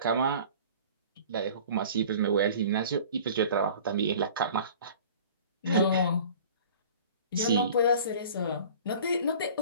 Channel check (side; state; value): both; inverted; correlation -0.45